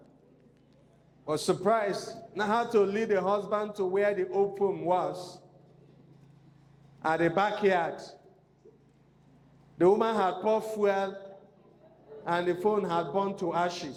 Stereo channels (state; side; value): identical; both; correlation 1.00